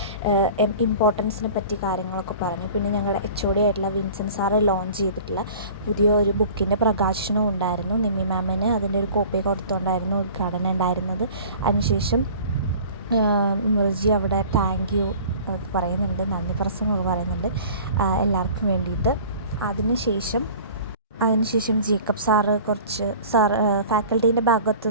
ഇമ്പോർട്ടൻസിനെ പറ്റി കാര്യങ്ങളൊക്കെ പറഞ്ഞു. പിന്നെ ഞങ്ങളുടെ HOD ആയിട്ടുള്ള വിൻസെൻ്റ് സാറ് ലോഞ്ച് ചെയ്തിട്ടുള്ള പുതിയ ഒരു ബുക്കിൻ്റെ പ്രകാശനവും ഉണ്ടായിരുന്നു. നിമ്മി മാമിന് അതിൻ്റെ ഒരു കോപ്പി കൊടുത്തുകൊണ്ടായിരുന്നു ഉദ്ഘാടനം ഉണ്ടായിരുന്നത്. അതിനുശേഷം മിർജി അവിടെ താങ്ക് യു പറയുന്നുണ്ട്, നന്ദി പ്രസംഗമൊക്കെ പറയുന്നുണ്ട് എല്ലാവർക്കും വേണ്ടിയിട്ട്. അതിനുശേഷം ജേക്കബ് സാറ് ഫാക്കൽറ്റീൻ്റെ ഭാഗത്തു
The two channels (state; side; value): inverted; both; correlation -0.44